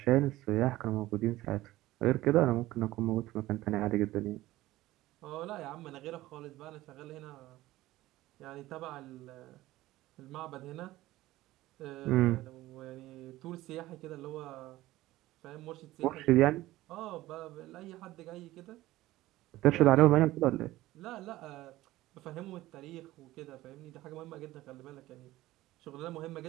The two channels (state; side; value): quieter; left; 16.8 dB